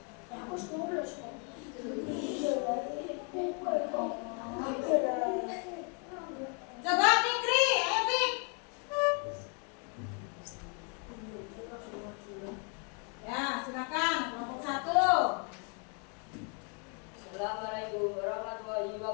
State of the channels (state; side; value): quieter; right; 38.1 dB